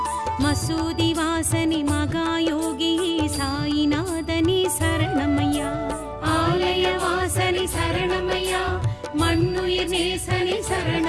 மசூதி வாசனி மகாயோகியே சாயிநாதனே சரணமையா ஆலய வாசனி சரணமையா மண்ணுயிர் நேசனே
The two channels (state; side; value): identical; both; correlation 1.00